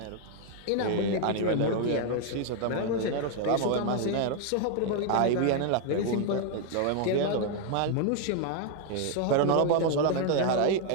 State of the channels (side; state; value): both; different; correlation 0.00